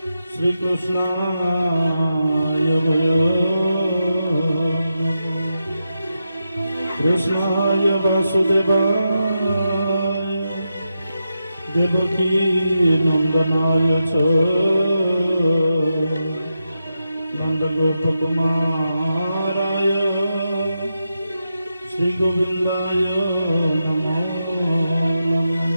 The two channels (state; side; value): inverted; both; correlation -0.88